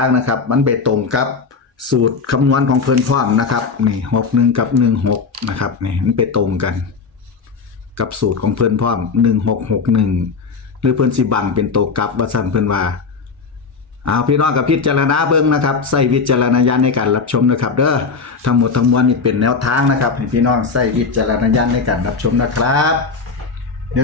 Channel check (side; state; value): right; quieter; 4.9 dB